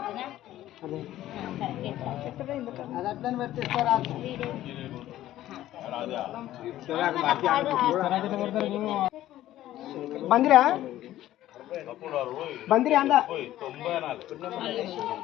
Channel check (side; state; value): right; quieter; 13.9 dB